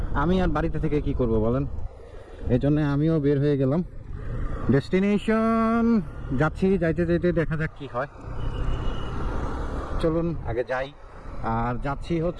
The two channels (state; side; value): identical; both; correlation 1.00